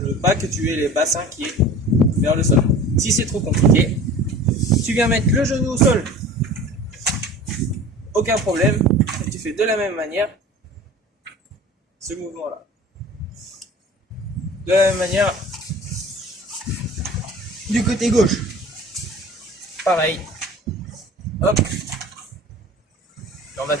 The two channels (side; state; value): both; normal; correlation 0.41